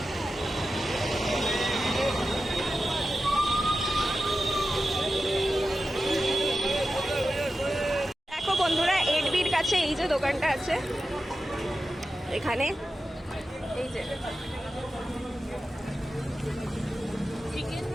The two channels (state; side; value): normal; both; correlation 0.92